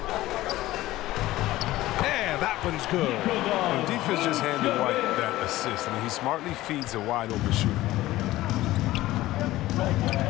And that one's good. The defense just handed White that assist. I mean, he smartly feeds a wide open shooter.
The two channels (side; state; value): right; quieter; 16.5 dB